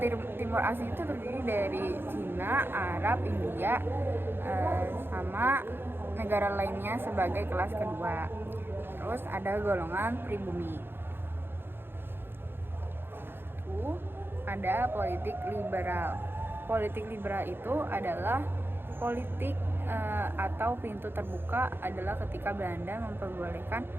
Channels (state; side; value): late; left; 0.10 ms